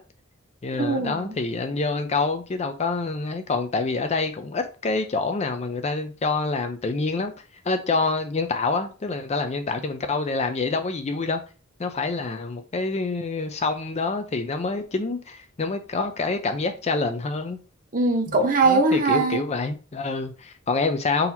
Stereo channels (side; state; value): both; normal; correlation 0.11